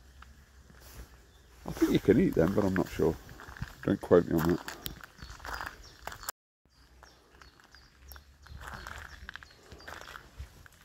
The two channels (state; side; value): identical; both; correlation 1.00